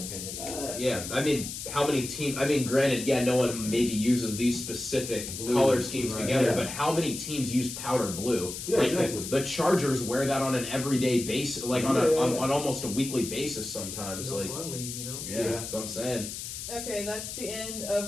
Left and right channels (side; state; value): left; noise; hiss, 7 dB below the sound